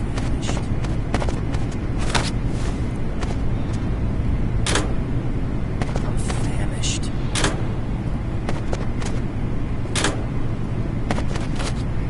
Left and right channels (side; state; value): both; identical; correlation 1.00